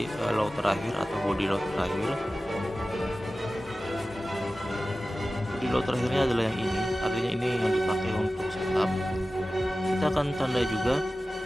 low terakhir atau body low terakhir. Body low terakhirnya adalah yang ini, artinya ini yang dipakai untuk setup. Kita akan tandai juga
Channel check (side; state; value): both; normal; correlation 0.95